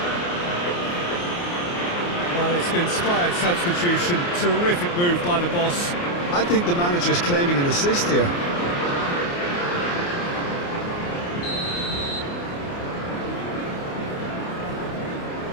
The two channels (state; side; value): late; right; 29 ms